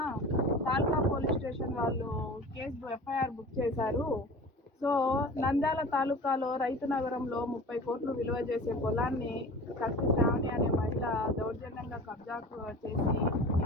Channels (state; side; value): normal; both; correlation 0.38